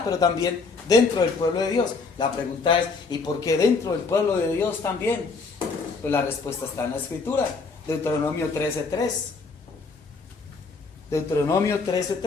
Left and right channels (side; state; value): right; quieter; 4.4 dB